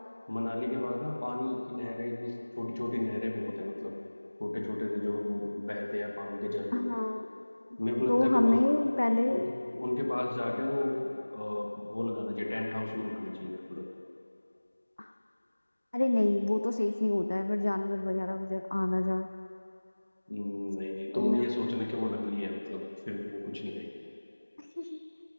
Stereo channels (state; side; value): inverted; both; correlation -1.00